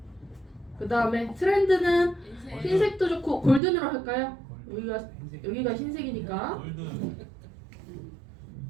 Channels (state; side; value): drops out; left; at 3.6 s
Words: 그 다음에 트렌드는 흰색도 좋고 골든으로 할까요? 여기가 흰색이니까